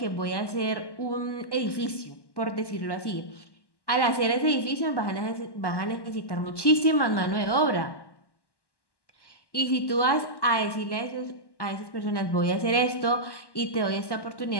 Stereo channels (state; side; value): late; right; 1.1 ms